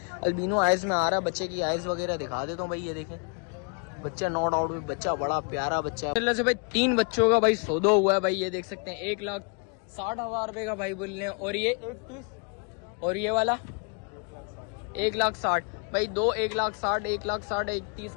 अल्बिनो आइज में आ रहा है, बच्चे की आइज वगैरह दिखा देता हूँ भाई। ये देखें बच्चा, नो डाउट बच्चा बड़ा प्यारा बच्चा है से भाई। 3 बच्चों का भाई सौदा हुआ है भाई। ये देख सकते हैं 1,60,000 रुपए का भाई बोल रहे हैं। और ये 1,30 और ये वाला 1,60,000 भाई। 1,60,000 1,60,000 1,30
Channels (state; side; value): quieter; right; 37.4 dB